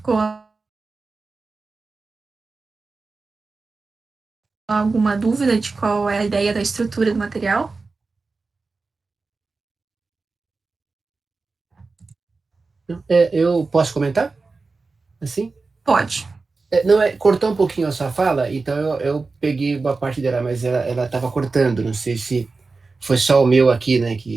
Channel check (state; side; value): quieter; left; 4.0 dB